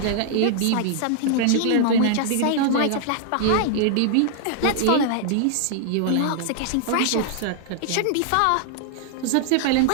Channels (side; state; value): both; different; correlation -0.01